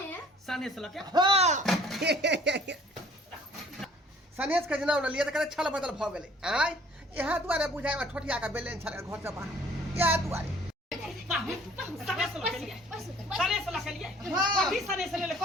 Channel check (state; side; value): normal; both; correlation 0.55